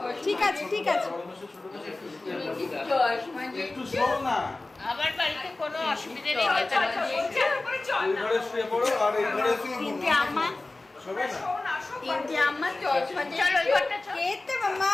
ঠিক আছে ঠিক আছে। একটু শোও না, আবার বাড়িতে কোনো অসুবিধা নেই, ওই ঘরে শুয়ে পড়ো আর এই ঘরে শুয়ে কিন্তু আমার শোবে না। চলো ওই ঘরটা চলো। কেতে মামা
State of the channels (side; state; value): right; quieter; 3.1 dB